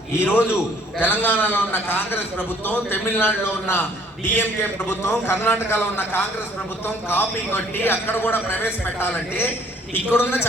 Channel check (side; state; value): both; normal; correlation 0.58